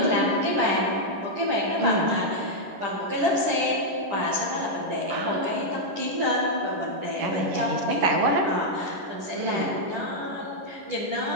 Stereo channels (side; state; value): left; late; 10 ms